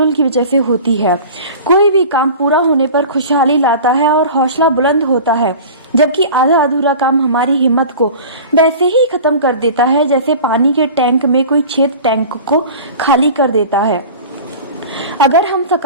की वजह से होती है। कोई भी काम पूरा होने पर खुशहाली लाता है और हौसला बुलंद होता है, जबकि आधा अधूरा काम हमारी हिम्मत को वैसे ही खत्म कर देता है जैसे पानी के टैंक में कोई छेद टैंक को खाली कर देता है। अगर हम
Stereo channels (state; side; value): inverted; both; correlation -0.38